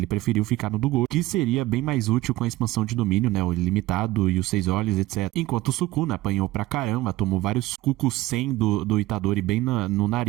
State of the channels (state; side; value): quieter; left; 17.7 dB